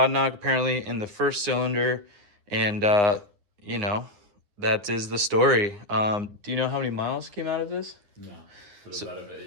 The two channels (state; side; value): late; left; 9.7 ms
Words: knock apparently in the first cylinder, and you know, that is the story. Do you know how many miles came out of this? No, but it's out of an